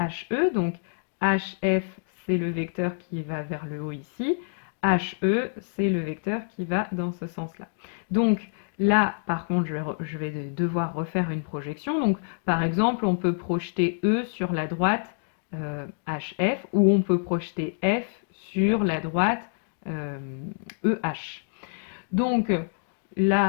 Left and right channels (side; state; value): right; silent; digital silence